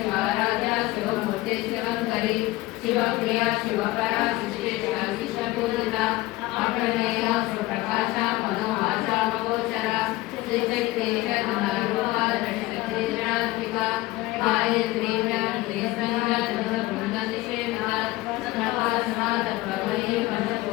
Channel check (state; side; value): quieter; right; 18.9 dB